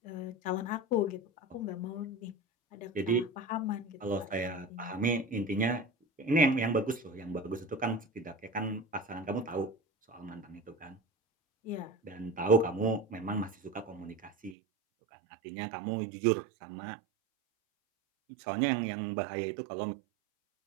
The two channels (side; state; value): left; drops out; at 14.6 s